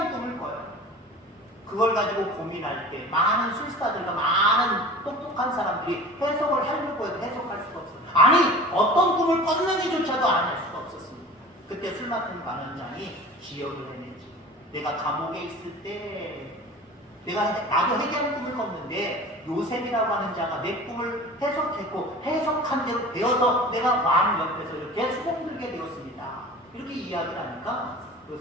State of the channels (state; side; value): normal; both; correlation 0.39